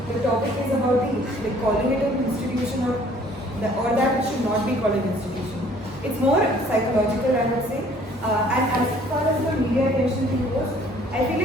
topic is about the calling it an institution or that it should not be called an institution. It's more psychological, I would say. And as far as the media attention thing goes, I feel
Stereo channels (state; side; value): normal; both; correlation 0.57